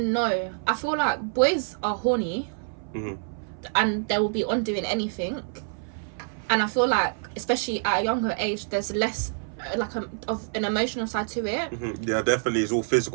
no. I feel like boys are horny, and they will be on doing anything. And I feel like, especially at a younger age, there's less of an emotional side to it. Yeah, definitely. It's all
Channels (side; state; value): left; silent; 60 dB below the other